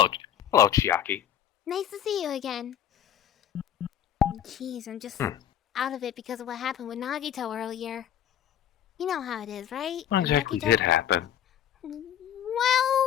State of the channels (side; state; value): right; quieter; 10.0 dB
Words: Chiaki. Nice to see you again. Jeez, I'm just out of it because of what happened with Nagito earlier. You know how it is, right? What exactly did happen? Well...